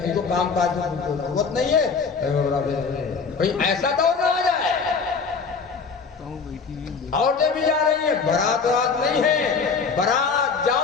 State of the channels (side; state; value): right; quieter; 5.2 dB